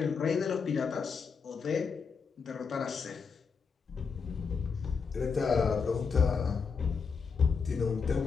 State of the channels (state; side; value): quieter; right; 5.6 dB